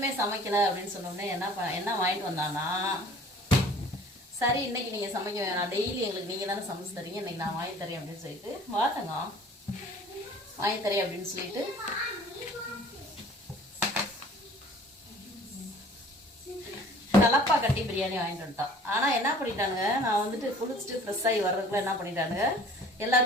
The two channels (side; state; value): both; normal; correlation 0.49